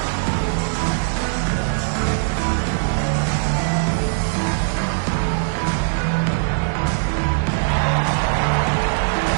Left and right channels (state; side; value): silent; left; digital silence